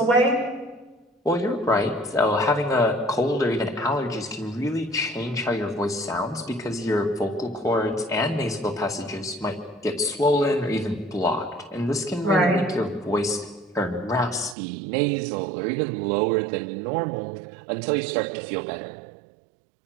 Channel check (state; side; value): drops out; left; at 14.6 s